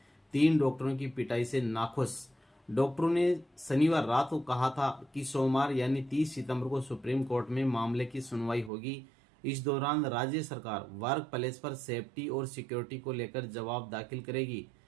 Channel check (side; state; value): left; drops out; at 8.7 s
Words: 3 डॉक्टरों की पिटाई से नाखुश। डॉक्टरों ने शनिवार रात को कहा था कि सोमवार यानी 30 सितंबर को सुप्रीम कोर्ट में मामले की सुनवाई होगी। इस दौरान राज्य सरकार वर्क प्लेस पर सेफ्टी और सिक्योरिटी को लेकर जवाब दाखिल करेगी।